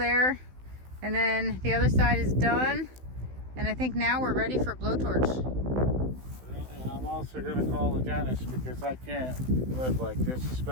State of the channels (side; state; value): left; late; 16 ms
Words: And then the other side is done. And I think now we're ready for blowtorch. And I'm also going to call the dentist because I can't live like this,